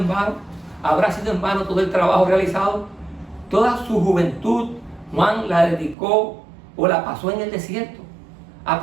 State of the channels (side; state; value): left; drops out; at 6.0 s